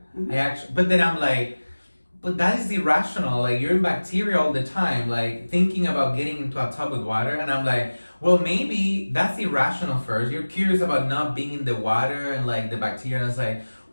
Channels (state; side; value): inverted; both; correlation -1.00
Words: But then I'm like, but that is irrational. Like, you're in bacteria all the time, like thinking about getting into a tub with water. And I'm like, well, maybe that's irrational first. You're curious about not being in the water and like the bacteria. And it's like,